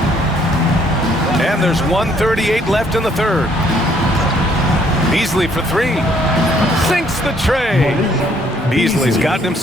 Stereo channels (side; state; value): both; normal; correlation 0.65